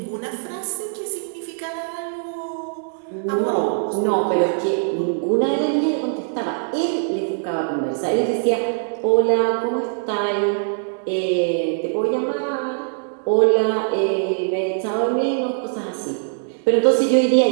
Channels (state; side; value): silent; left; digital silence